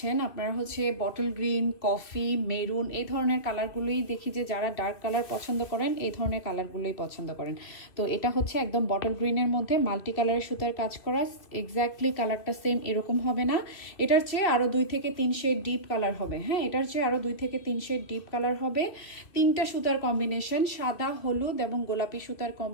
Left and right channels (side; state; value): right; late; 2.5 ms